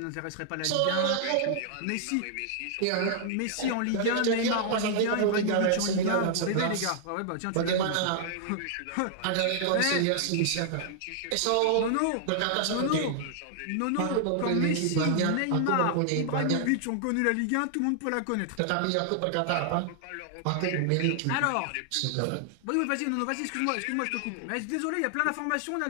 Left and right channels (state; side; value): different; both; correlation -0.01